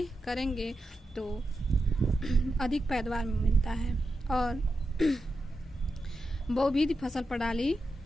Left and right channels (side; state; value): both; normal; correlation 0.88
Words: करेंगे तो अधिक पैदावार मिलता है और बहुविध फसल प्रणाली